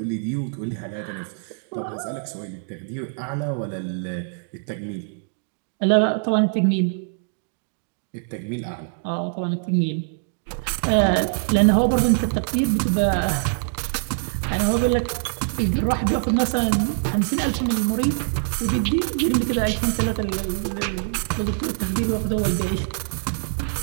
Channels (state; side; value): silent; left; digital silence